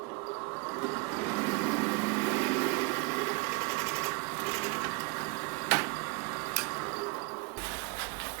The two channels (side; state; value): left; quieter; 27.7 dB